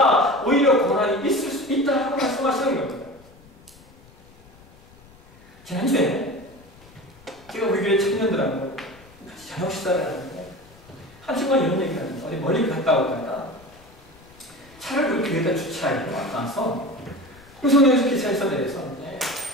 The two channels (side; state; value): left; noise; rumble, 25 dB below the sound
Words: 오히려 고난이 있을 수 있다고 말씀하시는 겁니다. 지난주에 제가 우리 교회 청년들하고 같이 저녁 식사를 하는데 한 친구가 이런 얘기를 합니다. 어디 멀리 갔다 오다가 차를 우리 교회에다 주차하고 와서 홍성역에서 기차에서 내려서